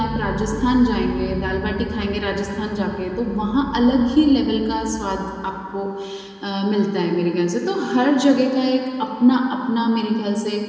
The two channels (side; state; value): both; identical; correlation 1.00